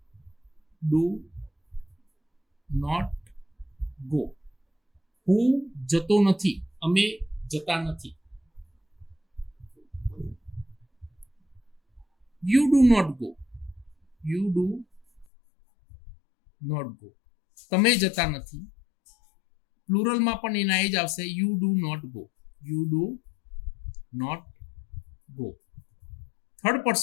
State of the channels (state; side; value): drops out; right; at 15.2 s